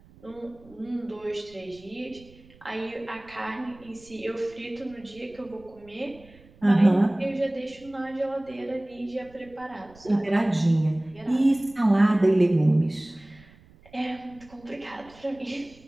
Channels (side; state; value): right; noise; rumble, 25 dB below the sound